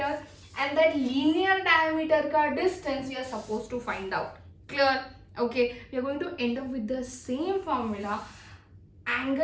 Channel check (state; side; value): identical; both; correlation 1.00